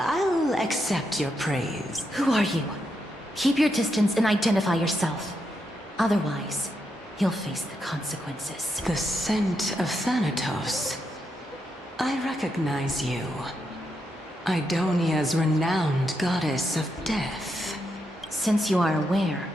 accept your praise. Who are you? Keep your distance and identify yourself. Otherwise, you'll face the consequences. The scent of Thanatos. I recognize you. Idonia's renowned goddess of death. Since you are aware,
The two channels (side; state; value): both; normal; correlation 0.82